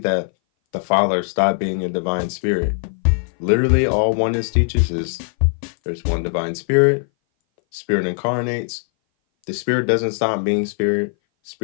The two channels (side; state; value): right; silent; 60 dB below the other